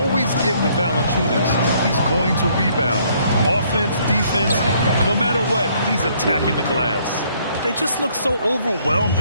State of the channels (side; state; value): both; inverted; correlation -0.65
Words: get with Valanciunas, he's going to rebound. Offense, defense, no matter what, he's attacking the glass. They just look so overwhelmed